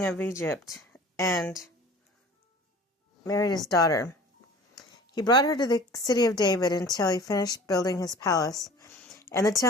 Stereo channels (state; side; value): normal; both; correlation 0.44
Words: of Egypt and married his daughter. He brought her to the city of David until he finished building his palace and the